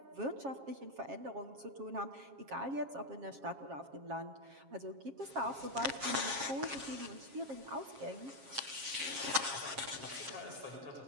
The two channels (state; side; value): late; left; 7.4 ms